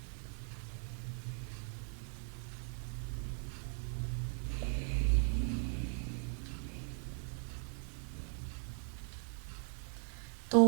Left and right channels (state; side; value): silent; left; 52 dB below the other